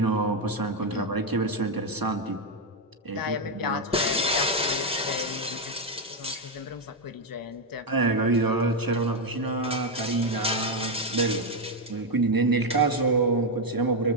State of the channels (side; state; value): both; normal; correlation 0.04